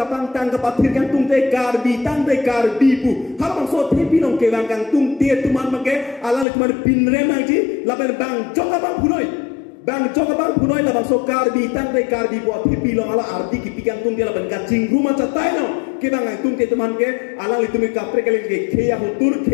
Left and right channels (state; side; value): drops out; right; at 6.5 s